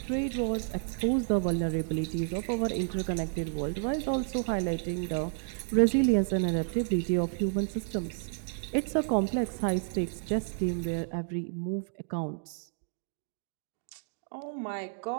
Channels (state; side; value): silent; left; digital silence